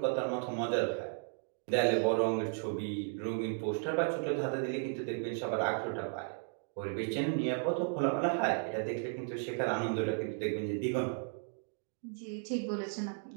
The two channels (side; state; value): left; silent; 55 dB below the other